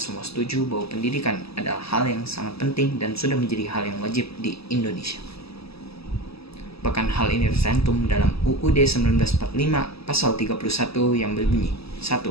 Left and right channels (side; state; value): right; late; 0.78 ms